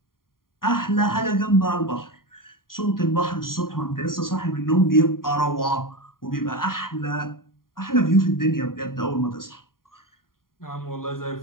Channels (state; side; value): late; right; 0.91 ms